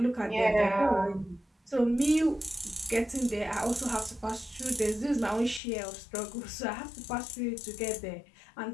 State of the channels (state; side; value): drops out; right; at 5.6 s